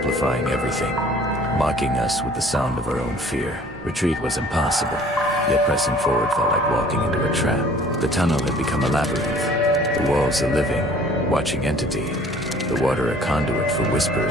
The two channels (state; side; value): normal; both; correlation 0.52